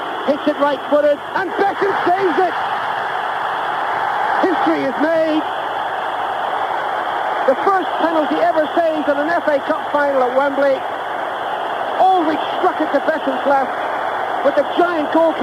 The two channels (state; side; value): identical; both; correlation 1.00